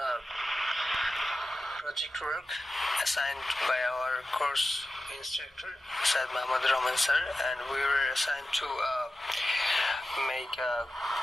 project work assigned by our course instructor, Said Muhammad Rahman sir, and we were assigned to make a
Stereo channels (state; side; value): normal; both; correlation 0.93